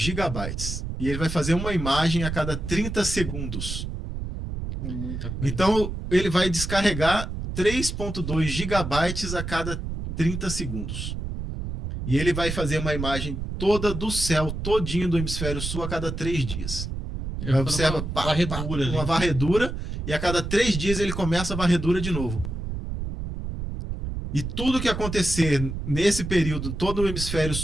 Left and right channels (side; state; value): right; noise; rumble, 5 dB below the sound